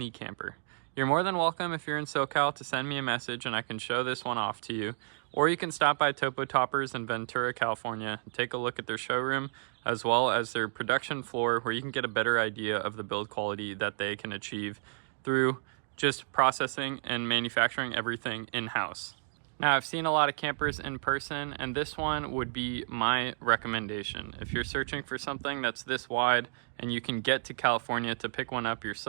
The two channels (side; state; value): left; silent; digital silence